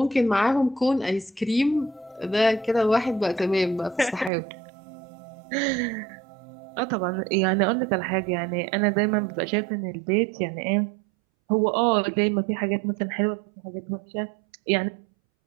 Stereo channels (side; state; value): left; drops out; at 4.3 s